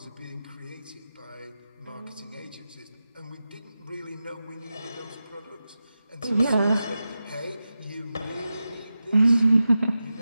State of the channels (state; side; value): inverted; both; correlation -0.93